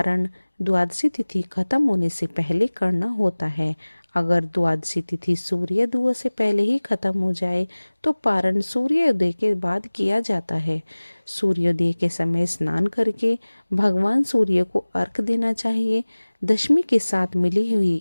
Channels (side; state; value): both; inverted; correlation -1.00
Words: द्वादशी तिथि खत्म होने से पहले करना होता है। अगर द्वादशी तिथि सूर्योदय से पहले ही खत्म हो जाए तो पारण सूर्योदय के बाद किया जाता है। सूर्योदय के समय स्नान करके भगवान सूर्य को अर्घ देना चाहिए। दशमी के साथ मिली हुई